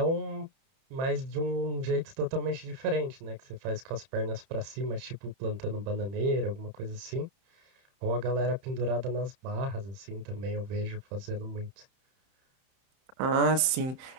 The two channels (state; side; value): late; left; 31 ms